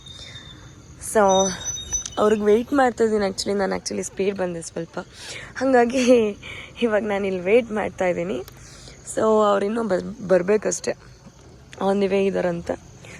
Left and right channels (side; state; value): both; identical; correlation 1.00